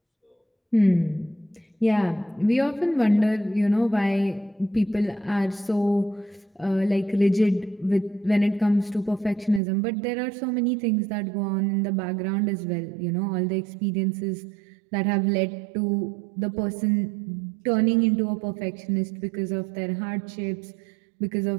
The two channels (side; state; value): left; drops out; at 9.6 s